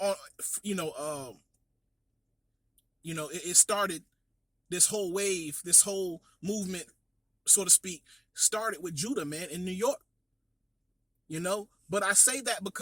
it started. This whole wave, this whole movement, so to speak, started with Judah, man, in New York. You know, but I say that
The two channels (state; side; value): normal; both; correlation 0.97